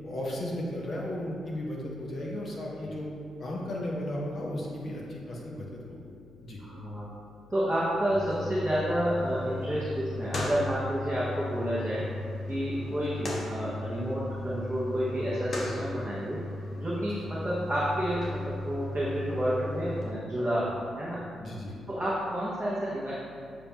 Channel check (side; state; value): left; noise; hum, 22 dB below the sound